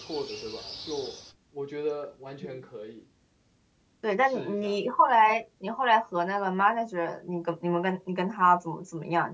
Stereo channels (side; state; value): both; identical; correlation 1.00